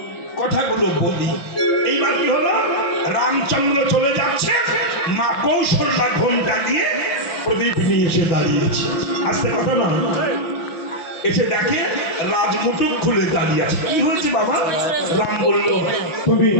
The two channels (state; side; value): late; right; 5.8 ms